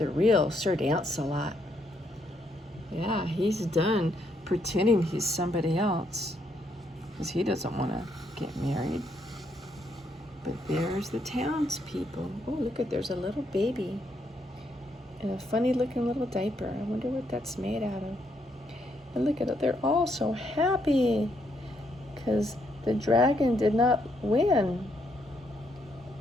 real Sir Lancelot. Yeah, he's done pretending he's somebody else, because he doesn't want to get married. But there's the townspeople. Oh, look at, there's a little baby in a funny looking little diaper. I wonder what that's made out of. And look at it, they're all so happy because the dragon did not win.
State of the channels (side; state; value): both; normal; correlation 0.75